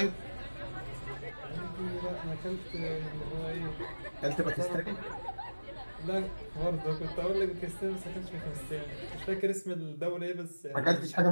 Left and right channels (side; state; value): both; inverted; correlation -1.00